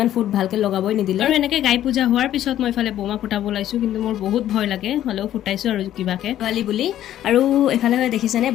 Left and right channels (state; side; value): quieter; right; 12.1 dB